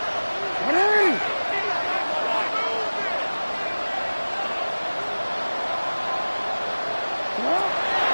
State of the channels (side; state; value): both; inverted; correlation -1.00